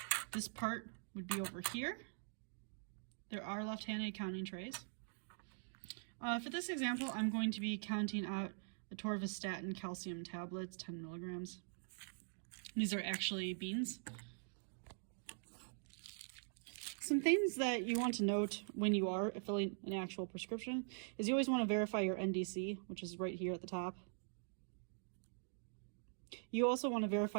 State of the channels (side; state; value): left; silent; digital silence